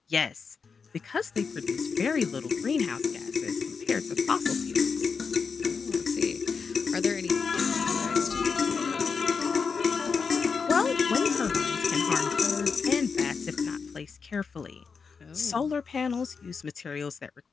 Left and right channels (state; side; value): quieter; right; 5.4 dB